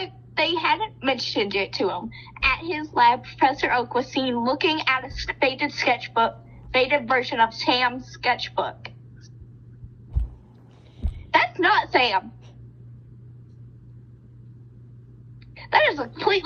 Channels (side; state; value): both; identical; correlation 1.00